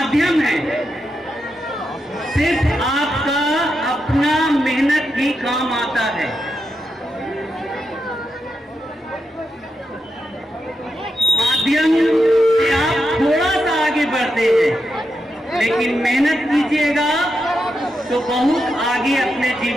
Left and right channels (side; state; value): both; normal; correlation 0.86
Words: है, सिर्फ आपका अपना मेहनत ही काम आता है। माध्यम से आप थोड़ा सा आगे बढ़ते हैं, लेकिन मेहनत कीजिएगा तो बहुत आगे अपने